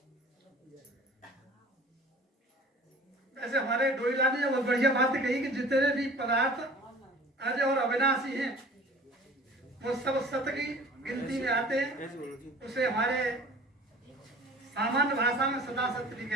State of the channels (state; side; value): normal; both; correlation 0.45